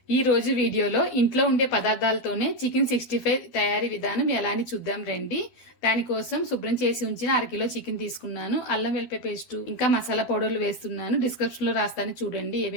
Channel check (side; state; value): right; late; 12 ms